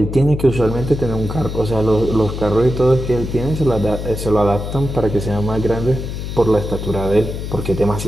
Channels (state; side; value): noise; left; hum, 6 dB below the sound